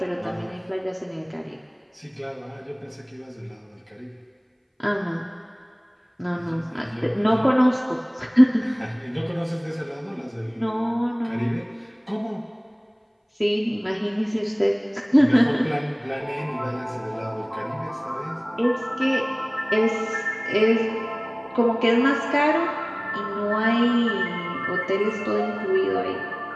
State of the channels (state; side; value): identical; both; correlation 1.00